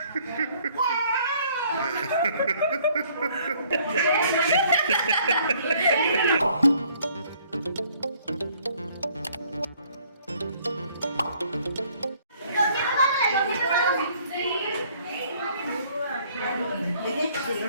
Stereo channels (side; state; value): both; inverted; correlation -0.61